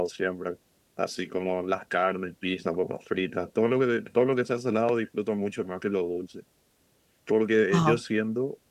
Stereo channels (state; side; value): identical; both; correlation 1.00